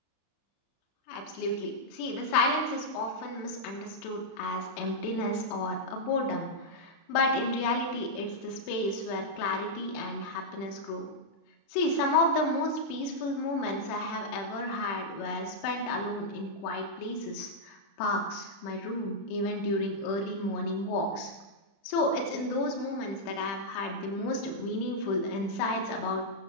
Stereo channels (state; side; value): late; right; 36 ms